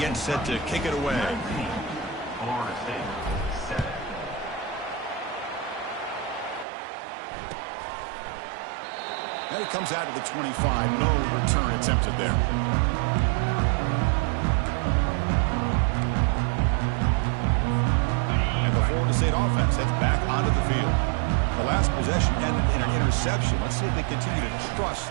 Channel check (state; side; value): drops out; left; at 6.7 s